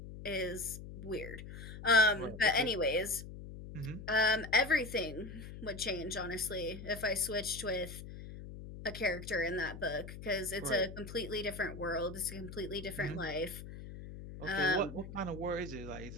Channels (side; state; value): left; noise; hum, 11 dB below the sound